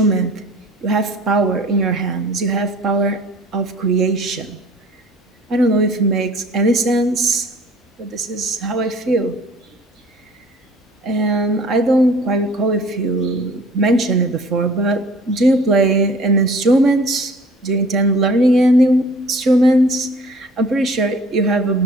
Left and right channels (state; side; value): normal; both; correlation 0.49